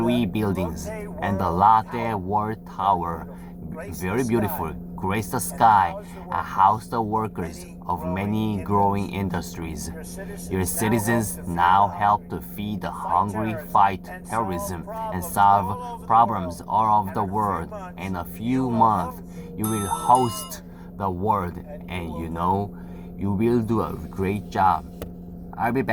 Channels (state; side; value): identical; both; correlation 1.00